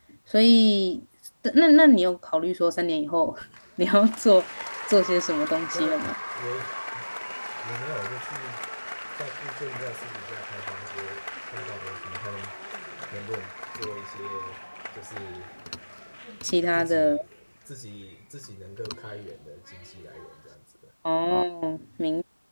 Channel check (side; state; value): both; inverted; correlation -1.00